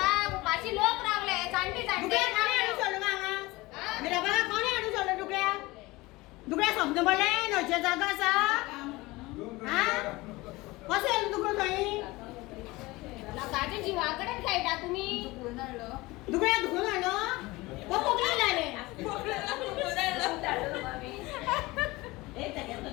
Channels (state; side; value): quieter; right; 21.2 dB